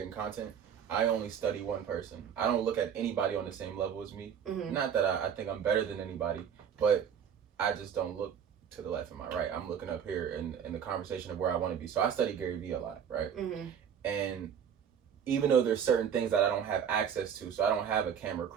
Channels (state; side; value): quieter; left; 8.0 dB